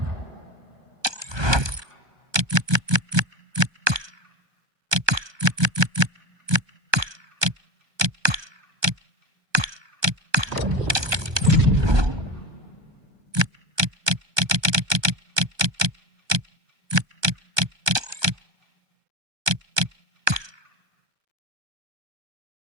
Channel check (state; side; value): late; left; 1.2 ms